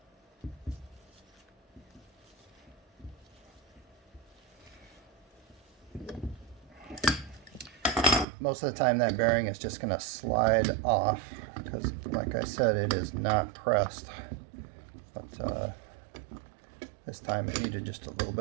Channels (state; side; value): drops out; left; at 8.2 s